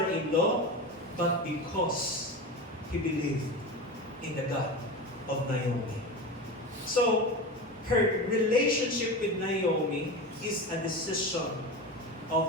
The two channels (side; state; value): both; normal; correlation 0.25